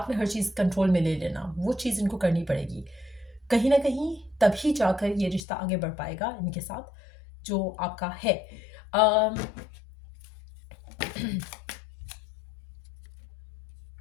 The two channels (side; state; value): right; drops out; at 5.4 s